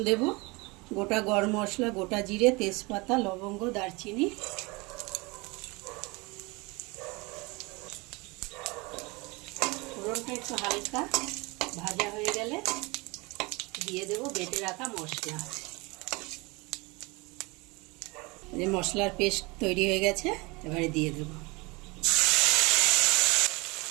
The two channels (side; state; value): left; quieter; 25.9 dB